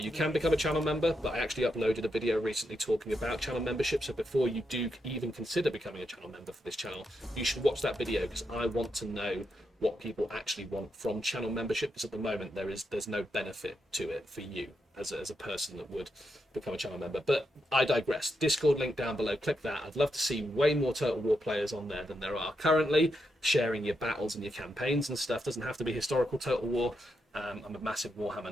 can become a channel member, but I actually uploaded a video recently talking about channel membership. So before you do even consider becoming a channel member for this channel, you should watch that video, because I want to know what people actually want from channel membership, because at the moment there's no benefit to it for you as a person that would become a channel member. But I digress. Discord link down below, click that. I'd love to see way more Total War players on there than there are currently, sharing your battles and your campaigns and stuff. Doesn't have to be historical Total War. I'm a massive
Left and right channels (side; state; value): both; normal; correlation 0.83